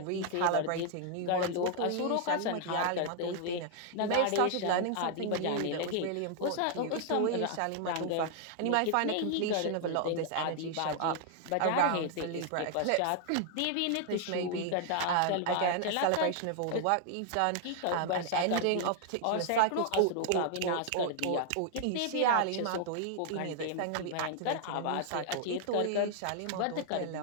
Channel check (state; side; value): different; both; correlation 0.00